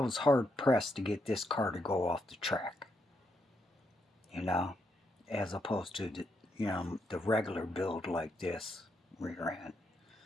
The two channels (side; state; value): both; normal; correlation 0.79